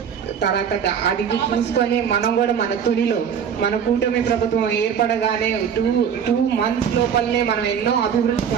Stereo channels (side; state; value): left; quieter; 7.7 dB